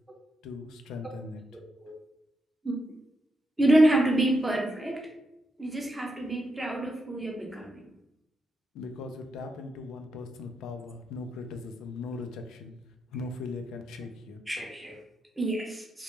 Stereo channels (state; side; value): normal; both; correlation 0.83